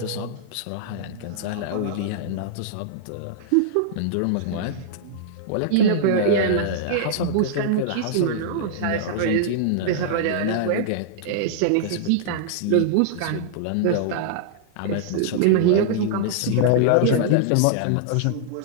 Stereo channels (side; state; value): both; different; correlation -0.01